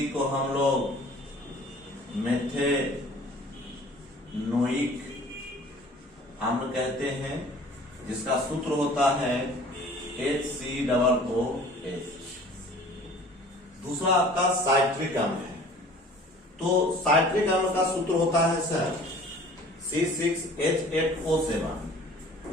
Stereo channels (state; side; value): normal; both; correlation 0.48